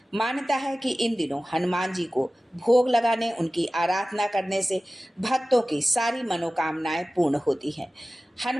मान्यता है कि इन दिनों हनुमान जी को भोग लगाने, उनकी आराधना करने से भक्तों की सारी मनोकामनाएं पूर्ण होती हैं।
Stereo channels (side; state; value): both; normal; correlation 0.96